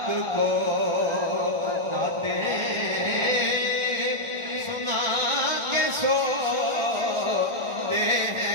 को नाते सुना के सोते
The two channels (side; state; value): left; late; 1.4 ms